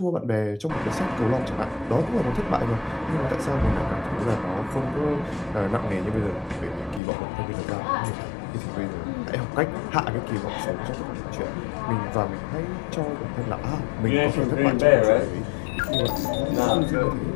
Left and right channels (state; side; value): drops out; right; at 7.0 s